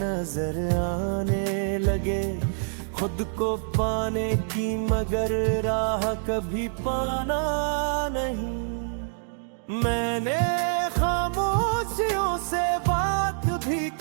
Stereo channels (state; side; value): silent; left; digital silence